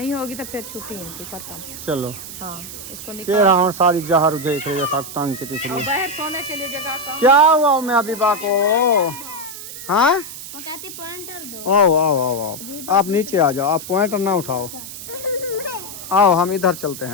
होगी तो फिर छुट्टी इनकी खत्म। चलो हाँ इसको कह निकाल। रहा हूँ सारी जहर उजे सब तंग की दिख रही और है। बाहर सोने के लिए जगह कम। क्या हुआ मैं अबीबा को? हाँ वो कहती पॉइंटर दो। आओ आओ आओ आओ, आप नीचे आ जाओ, आप पॉइंटर ना उठाओ, आओ हम इधर चलते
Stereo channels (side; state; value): right; noise; hiss, 11 dB below the sound